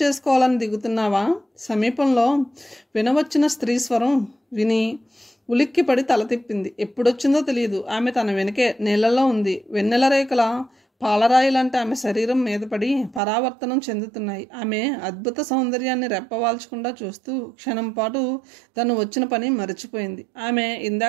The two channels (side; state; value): left; drops out; at 13.2 s